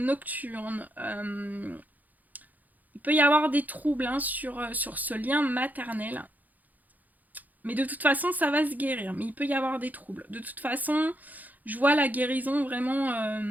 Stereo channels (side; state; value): left; late; 0.082 ms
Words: Il peut y avoir des troubles, hein, sur ce lien maternel. Mais de toute façon, ça va se guérir. Mais il peut y avoir des troubles. De toute façon, je vois la guérison vraiment...